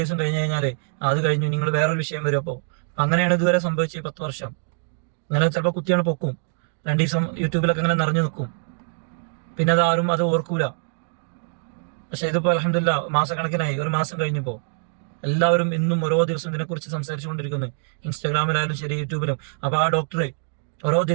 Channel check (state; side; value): silent; left; 63 dB below the other